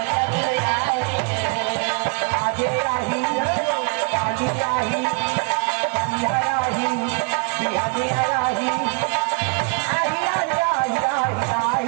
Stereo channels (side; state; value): left; quieter; 36.2 dB